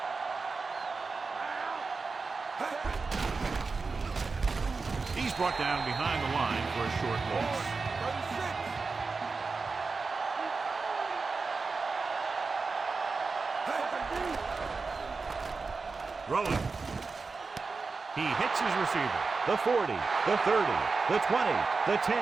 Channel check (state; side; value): quieter; left; 4.3 dB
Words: He's brought down behind the line for a short loss. Rolling. He hits his receiver. The 40, the 30, the 20, the 10.